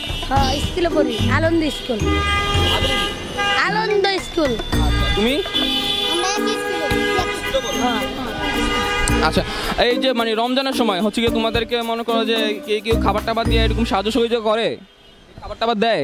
হ্যাঁ, স্কুলে পড়ি, আনন্দ স্কুল। আনন্দ স্কুল। তুমি? আচ্ছা, এই যে মানে রমজানের সময় হচ্ছে কি তোমাদেরকে মনে করো যে কেউ খাবার টাবার দিয়ে এরকম সাহায্য সহযোগিতা করে, খাবার টাবার দেয়,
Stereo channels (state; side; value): identical; both; correlation 1.00